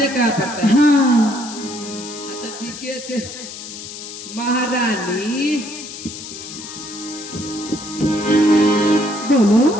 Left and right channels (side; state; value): left; noise; hiss, 11 dB below the sound